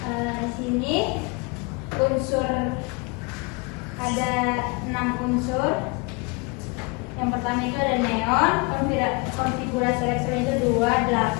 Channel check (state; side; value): quieter; right; 29.0 dB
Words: Di sini unsur ada 6 unsur. Yang pertama itu ada neon, konfigurasi elektron itu 2,